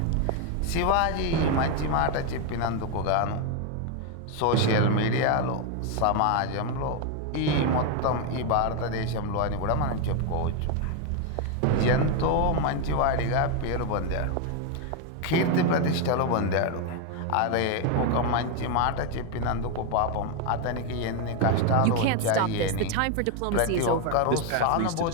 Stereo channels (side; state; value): both; different; correlation 0.01